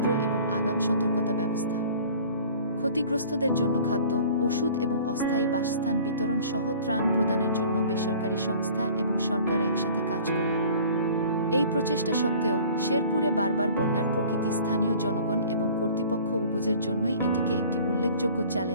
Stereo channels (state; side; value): inverted; both; correlation -0.48